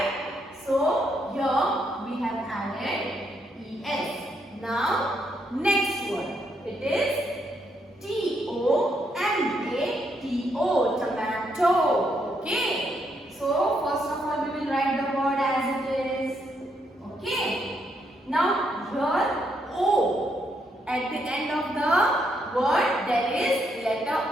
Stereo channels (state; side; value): normal; both; correlation 0.76